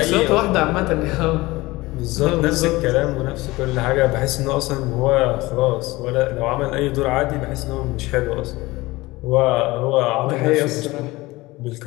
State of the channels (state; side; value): quieter; right; 20.5 dB